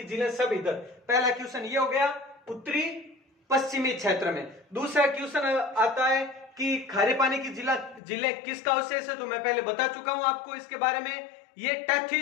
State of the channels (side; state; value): right; drops out; at 8.0 s